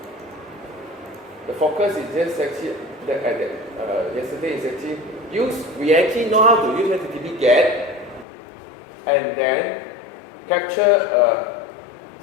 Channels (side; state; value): right; drops out; at 8.2 s